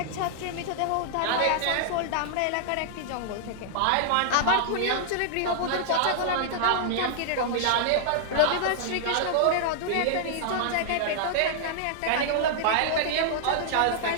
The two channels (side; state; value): both; different; correlation -0.01